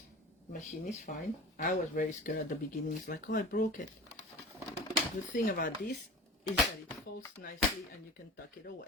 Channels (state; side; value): normal; both; correlation 0.37